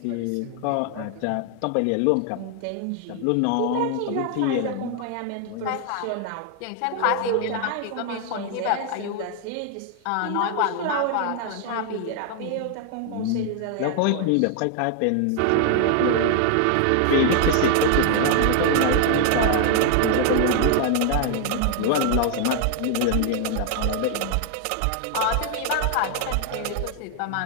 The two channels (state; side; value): different; both; correlation 0.00